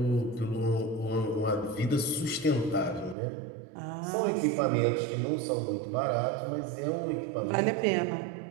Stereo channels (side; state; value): left; drops out; at 3.2 s